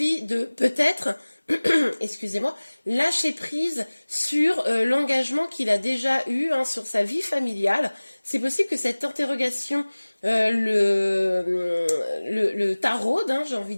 de peut-être excusez-moi, lâcher prise sur l'engagement qu'il a déjà eu sur sa vie familiale. C'est possible que cette interrogation le taraude, j'ai envie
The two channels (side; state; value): both; inverted; correlation -1.00